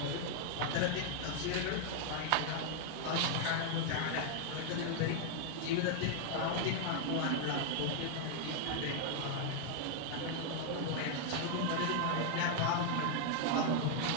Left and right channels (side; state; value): both; different; correlation 0.00